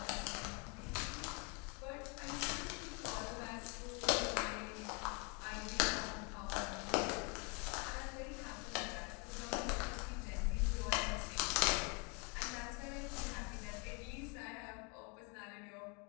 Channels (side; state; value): right; quieter; 31.7 dB